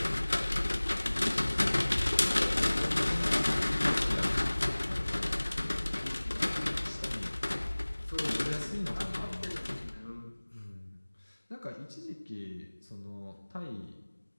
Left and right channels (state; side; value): inverted; both; correlation -1.00